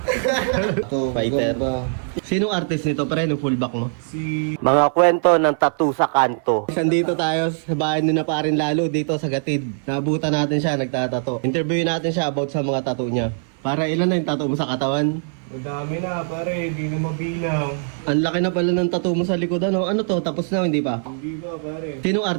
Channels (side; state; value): left; silent; 56 dB below the other